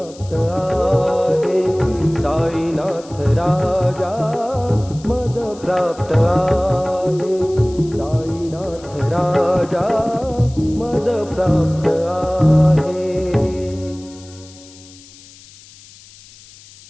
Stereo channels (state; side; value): noise; left; hiss, 22 dB below the sound